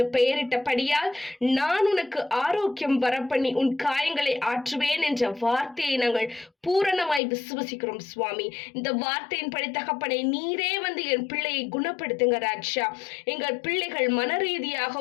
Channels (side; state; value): right; drops out; at 7.2 s